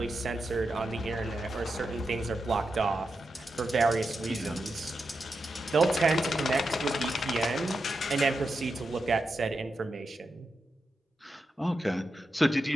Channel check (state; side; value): normal; both; correlation 0.88